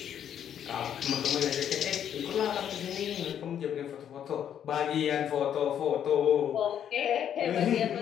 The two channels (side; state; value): right; quieter; 9.4 dB